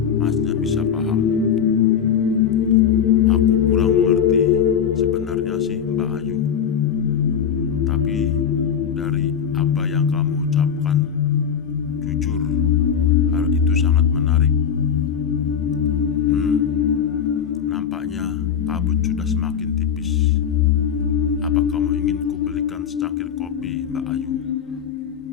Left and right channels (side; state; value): right; quieter; 7.9 dB